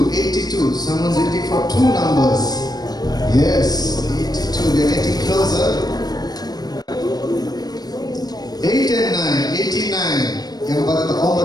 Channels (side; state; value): right; late; 0.19 ms